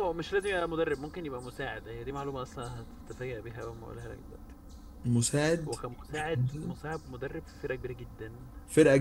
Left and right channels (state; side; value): identical; both; correlation 1.00